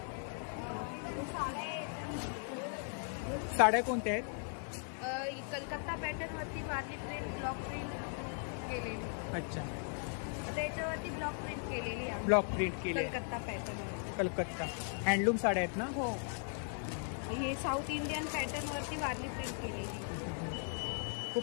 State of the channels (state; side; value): silent; right; 52 dB below the other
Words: साड्या कोणत्या आहेत? कलकत्ता पॅटर्न वरती वारली प्रिंट, ब्लॉक प्रिंट केलेली. अच्छा, आता याच्यावरती ब्लॉक प्रिंट केलेली आहे. ब्लॉक प्रिंट केली. कलकत्ता पॅटर्न. कलकत्ता हँडलूम साड्या आहेत ना? हो. हे साऊथ इंडियन पॅटर्न वरती वारली प्रिंट केलेली.